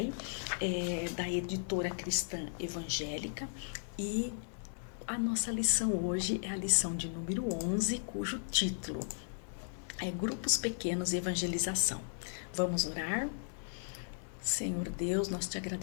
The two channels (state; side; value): silent; right; 54 dB below the other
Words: da editora cristã evangélica, e a nossa lição hoje é a lição de número 11, cujo título é Grupos Pequenos e Evangelização. Vamos orar? Senhor Deus, nós te